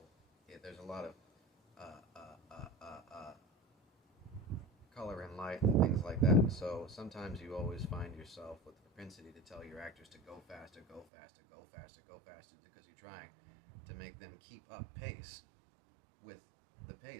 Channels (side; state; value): left; drops out; at 11.1 s